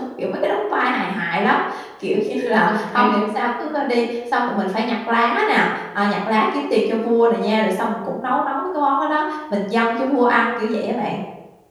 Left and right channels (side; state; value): both; identical; correlation 1.00